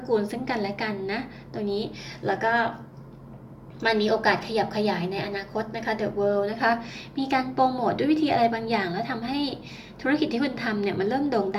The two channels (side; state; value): both; identical; correlation 1.00